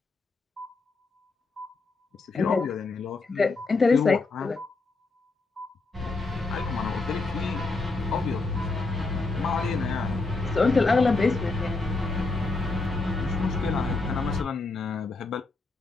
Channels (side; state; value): right; quieter; 3.6 dB